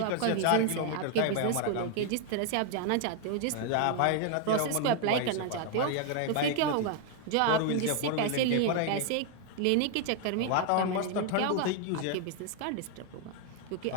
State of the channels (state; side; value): different; both; correlation 0.00